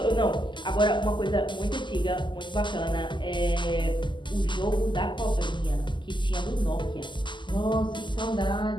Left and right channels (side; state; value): right; late; 0.23 ms